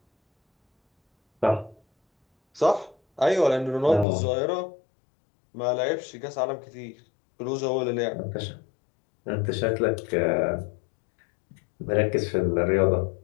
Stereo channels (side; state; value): right; drops out; at 4.0 s